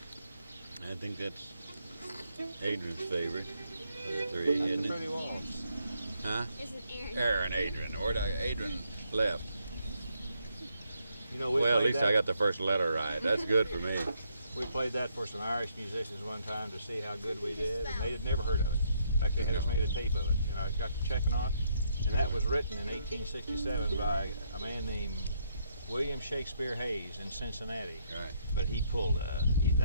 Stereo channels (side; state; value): both; inverted; correlation -0.74